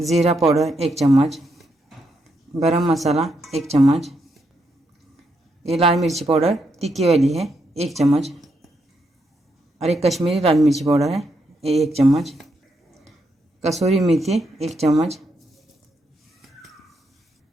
पाउडर 1 चम्मच, गरम मसाला 1 चम्मच, ये लाल मिर्ची पाउडर तीखी वाली है 1 चम्मच, और एक कश्मीरी लाल मिर्ची पाउडर है ये 1 चम्मच, कसूरी मेथी 1 चम्मच,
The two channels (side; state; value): both; normal; correlation 0.80